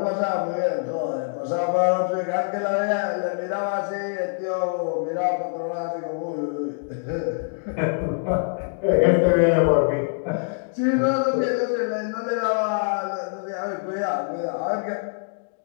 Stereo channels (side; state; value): right; silent; digital silence